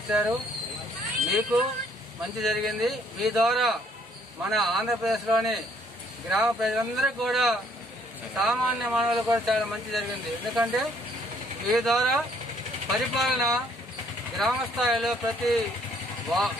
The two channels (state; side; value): normal; both; correlation 0.64